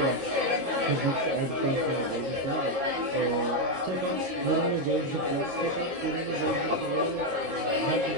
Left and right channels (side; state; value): left; late; 22 ms